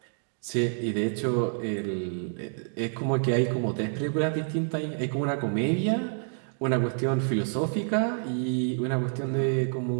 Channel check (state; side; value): silent; left; digital silence